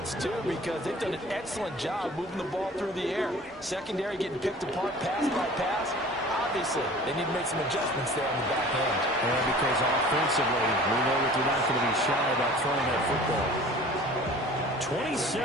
it's due, because they've done an excellent job moving the ball through the air. Secondary getting picked apart pass by pass. Obviously, they need to make some adjustments there on the back end. And because offensively, we know that they're not going to be shy about throwing that football.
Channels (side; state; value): both; normal; correlation 0.45